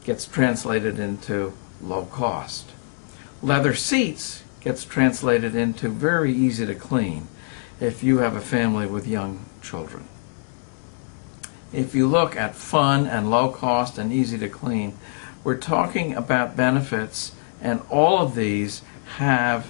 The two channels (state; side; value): silent; right; digital silence